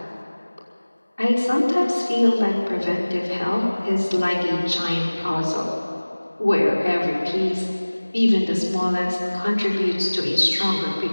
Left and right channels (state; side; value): inverted; both; correlation -1.00